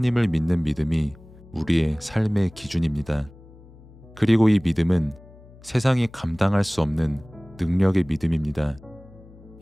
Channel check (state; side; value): noise; left; hum, 22 dB below the sound